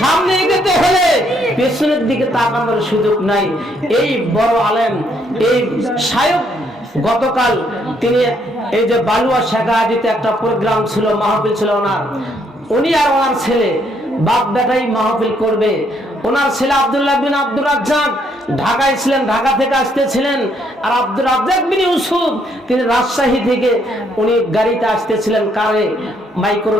সামনে এগোতে হলে পেছনের দিকে তাকানোর সুযোগ নাই। এই বড় আলেম, এই শায়ক, গতকাল তিনি এই যে বালুয়া শেখাহাজিতে একটা প্রোগ্রাম ছিল, মাহফিল ছিল ওনার, উনি আর ওনার ছেলে বাপ বেটাই মাহফিল করবে। ওনার ছেলে আব্দুল্লাহ বিন আব্দুর রাজ্জাক ঢাকায় ছিলেন, ঢাকা থেকে আসতেছিলেন, আর আব্দুর রাজ্জাক বিন ইউসুফ তিনি রাজশাহী থেকে উনি গাড়িতে আসতেছিলেন, কারে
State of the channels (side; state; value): both; normal; correlation 0.71